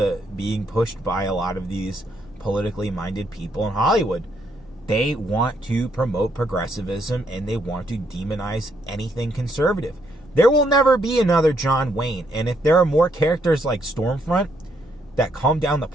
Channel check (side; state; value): both; normal; correlation 0.73